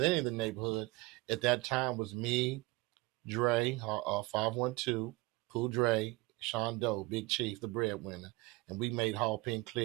the neighborhood at that time was me, Dre, 512, Cool Dre, Sean Doe, Big Chief, the breadwinner, and we made Hall Pen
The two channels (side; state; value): left; quieter; 22.2 dB